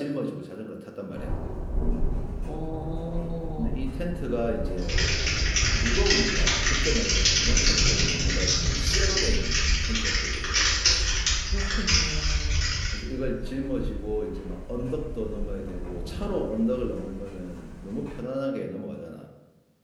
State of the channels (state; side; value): identical; both; correlation 1.00